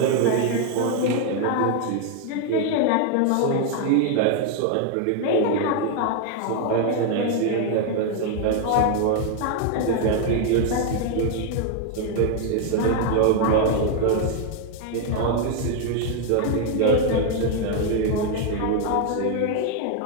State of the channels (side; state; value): both; different; correlation 0.01